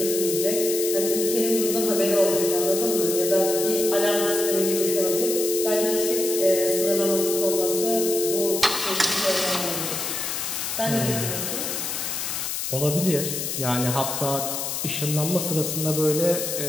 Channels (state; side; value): noise; left; hiss, 3 dB below the sound